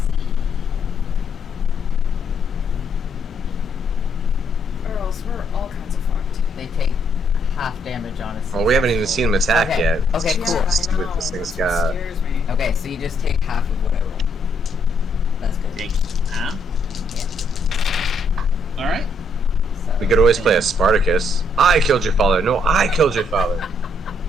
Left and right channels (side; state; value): both; normal; correlation 0.71